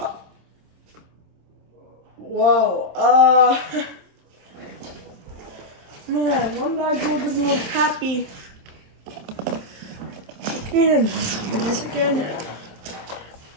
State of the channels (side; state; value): left; late; 27 ms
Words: Whoa. Man, one bad goal doesn't look happy. Okay, then let's try this again.